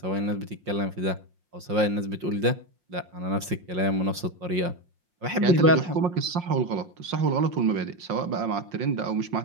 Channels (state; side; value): late; left; 5.6 ms